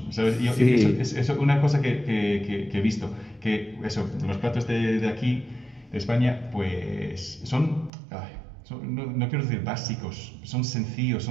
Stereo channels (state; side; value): drops out; left; at 7.9 s